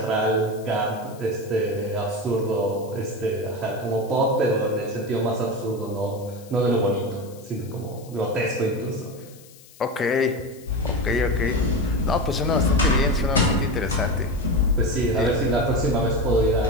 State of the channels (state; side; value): noise; left; hiss, 23 dB below the sound